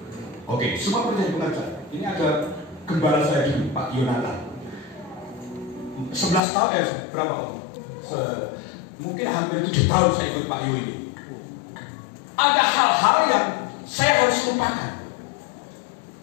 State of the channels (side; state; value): right; drops out; at 6.4 s